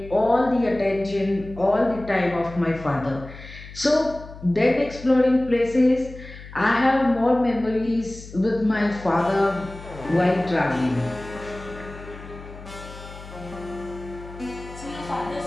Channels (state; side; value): noise; left; hum, 15 dB below the sound